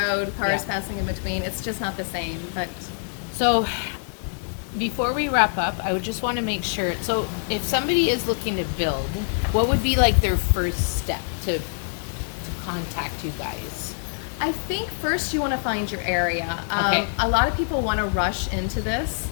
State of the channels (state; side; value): silent; right; digital silence